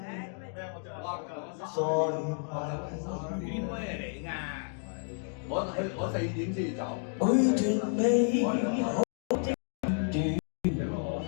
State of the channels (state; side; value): silent; right; 57 dB below the other